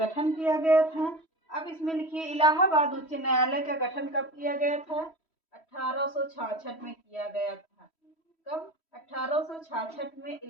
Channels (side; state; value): right; late; 3.1 ms